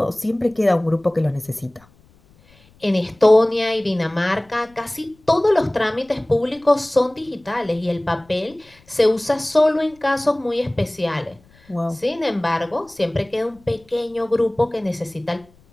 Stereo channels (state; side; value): noise; left; rumble, 30 dB below the sound